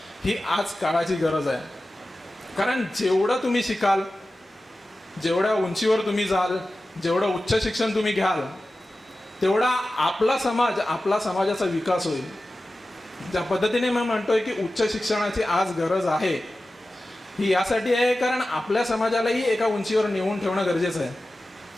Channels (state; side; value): normal; both; correlation 0.95